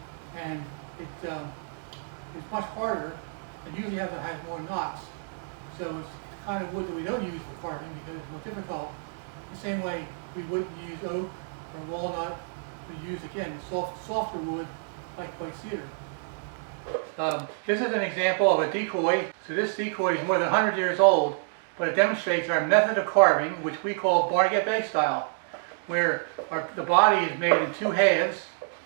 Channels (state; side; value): silent; left; digital silence